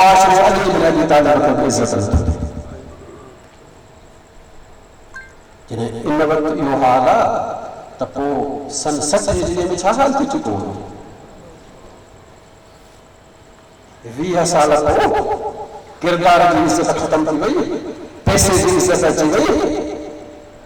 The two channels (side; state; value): both; identical; correlation 1.00